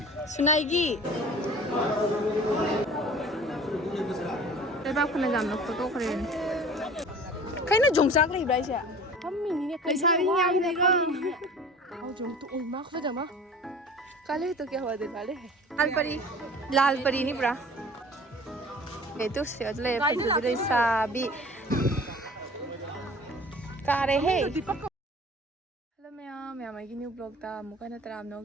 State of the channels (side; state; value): both; normal; correlation 0.44